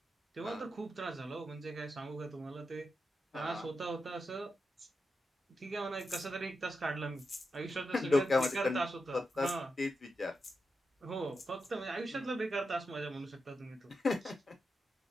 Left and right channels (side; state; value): both; normal; correlation 0.87